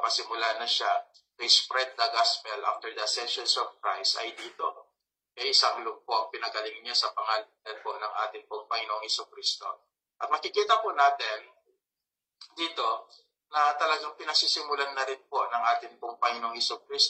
na siya to spread the gospel after the ascension of Christ ay dito. Isang lugpo, pinagaling niya sa pangalan po ng ating pong Panginoong Jesucristo. At makikita po natin dito na talagang pinasisimulan na rin po ng ating pong Panginoong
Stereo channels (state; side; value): identical; both; correlation 1.00